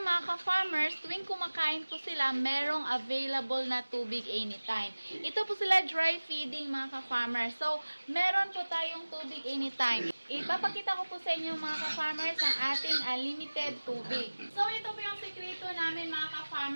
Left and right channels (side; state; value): both; inverted; correlation -1.00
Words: mga ka-farmers, tuwing kumakain po sila, merong available na tubig anytime. Ito po sila dry feeding mga ka-farmers. So, meron po tayong tubig anytime. Ipapakita ko po sa inyo mga ka-farmers ang ating unlimited tubig. So, ito po yung sekreto namin mga